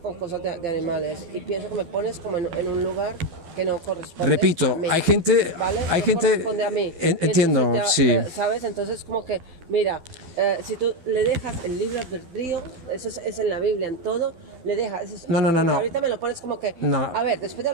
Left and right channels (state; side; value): late; left; 12 ms